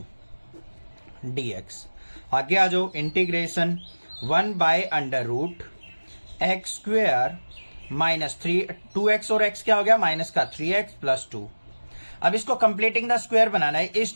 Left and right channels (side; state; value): both; inverted; correlation -1.00